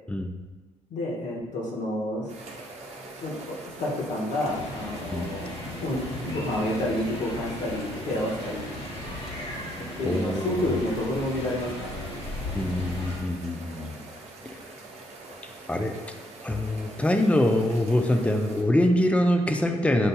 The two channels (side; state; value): both; normal; correlation 0.77